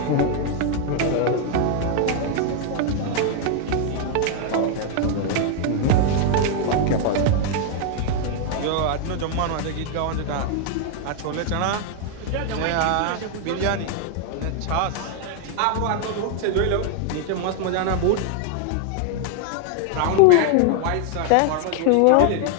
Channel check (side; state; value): both; different; correlation 0.00